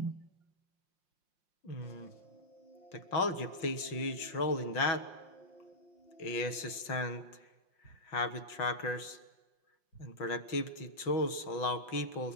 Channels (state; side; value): late; right; 5.6 ms